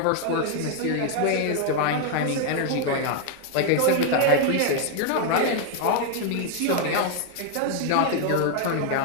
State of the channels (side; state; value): both; different; correlation 0.00